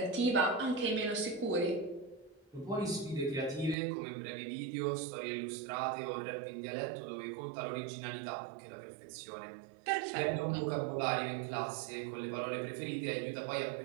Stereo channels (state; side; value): drops out; left; at 3.8 s